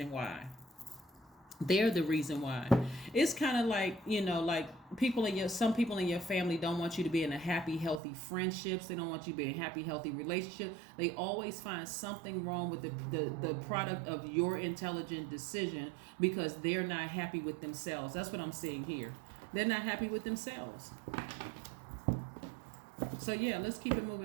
why. It's kind of like, like some people in your family don't want you to be in a happy, healthy friendships. They don't want you to be in a happy, healthy relationship. They always find something wrong with the product of your intelligent decision, because they're not happy with themselves. That's what I'm seeing here. They're not happy with themselves. So yeah, let's keep it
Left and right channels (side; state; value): left; drops out; at 8.0 s